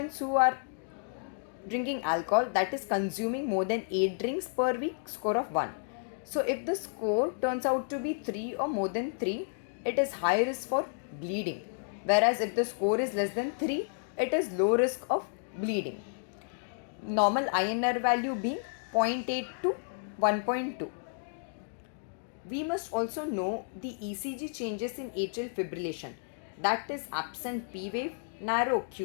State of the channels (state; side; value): silent; right; digital silence